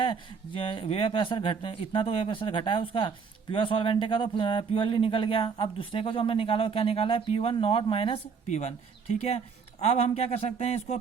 वेपर प्रेशर घट इतना तो वेपर प्रेशर घटा है उसका, प्योर सॉल्वेंट का तो प्योरली निकल गया। अब दूसरे का जो हमने निकाला क्या निकाला है, P1 नॉट माइनस P1, ठीक है। अब हम क्या कर सकते हैं, इसको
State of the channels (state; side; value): quieter; left; 5.7 dB